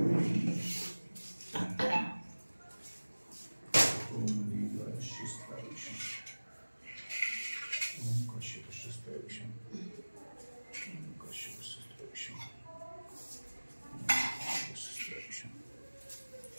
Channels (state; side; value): inverted; both; correlation -1.00